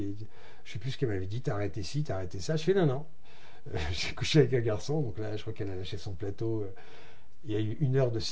ne sais plus ce qu'elle m'avait dit. T'as arrêté ci, t'as arrêté ça. Je fais non. J'ai couché avec un garçon. Donc là, je crois qu'elle a lâché son plateau. Il y a eu 1 heure de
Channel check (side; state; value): both; identical; correlation 1.00